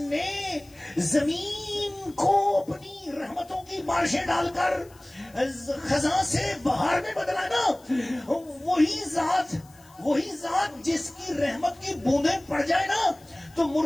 زمین کو اپنی رحمتوں کی بارشیں ڈال کر خزاں سے بہار میں بدلا نا، وہی ذات جس کی رحمت کی بوندیں پڑ جائے نا تو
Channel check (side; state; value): left; noise; hiss, 27 dB below the sound